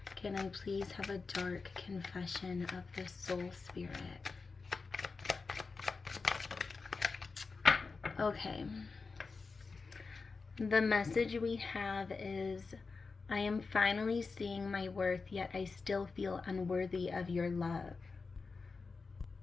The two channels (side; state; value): right; quieter; 4.4 dB